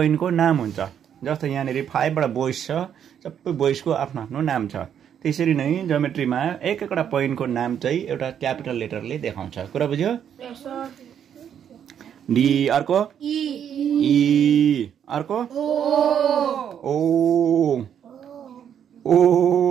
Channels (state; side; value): quieter; left; 8.9 dB